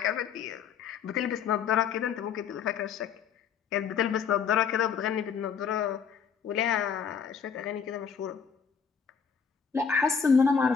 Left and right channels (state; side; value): quieter; right; 6.7 dB